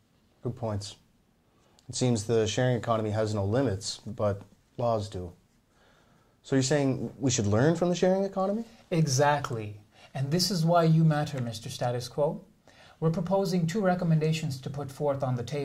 Good points. It seems the sharing economy has no limits, but laws do. So you're saying we should learn from the sharing economy? Exactly. And this is why you matter, Mr. Status Quo. We're proposing 2 recommendations to put forth on the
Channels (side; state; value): both; identical; correlation 1.00